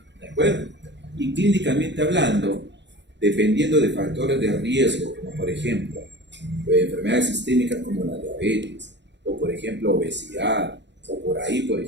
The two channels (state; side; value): late; left; 0.52 ms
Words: ¿de acuerdo? Y clínicamente hablando, dependiendo de factores de riesgo, como por ejemplo enfermedades sistémicas como la diabetes, o por ejemplo obesidad, o por ahí por